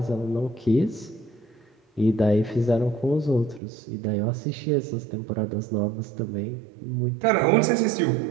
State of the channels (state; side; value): drops out; left; at 3.6 s